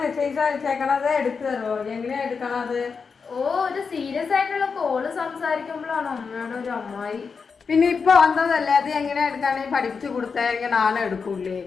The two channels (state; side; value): quieter; right; 5.4 dB